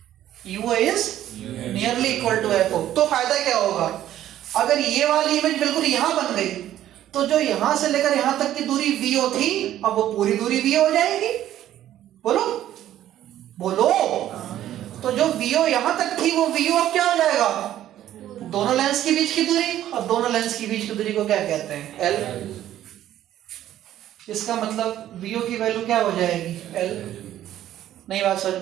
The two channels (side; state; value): left; quieter; 12.4 dB